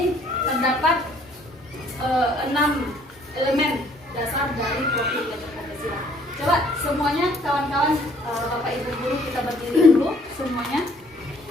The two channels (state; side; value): normal; both; correlation 0.61